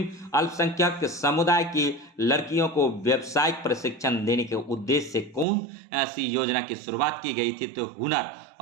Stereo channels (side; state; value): left; drops out; at 5.5 s